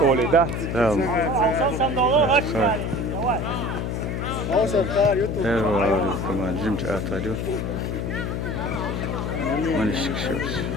öyle da. Tamam. Sen Eyvallah. Tamam. Cimç atarıyor. Maniş kişiyoruz.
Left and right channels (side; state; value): left; noise; hum, 2 dB below the sound